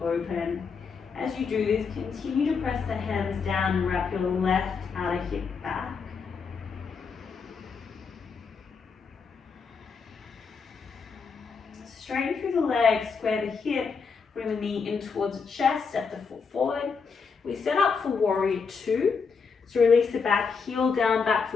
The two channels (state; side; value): quieter; right; 5.4 dB